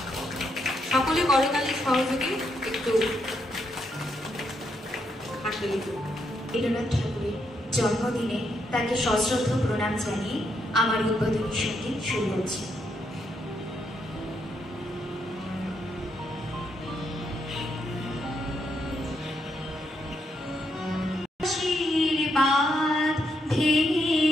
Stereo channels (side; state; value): both; normal; correlation 0.78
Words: সকলে করতালির সহযোগে একটু হাততালি। রবীন্দ্রনাথ ঠাকুরের জন্মদিনে তাকে সশ্রদ্ধ প্রণাম জানিয়ে আমার উদ্বোধনী সঙ্গীত শুরু হচ্ছে। আশীর্বাদ